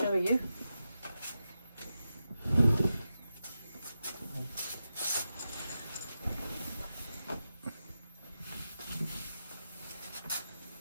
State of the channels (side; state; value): both; inverted; correlation -0.90